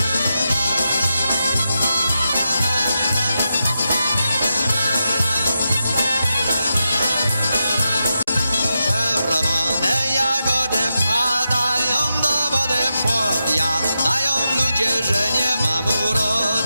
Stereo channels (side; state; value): both; inverted; correlation -0.87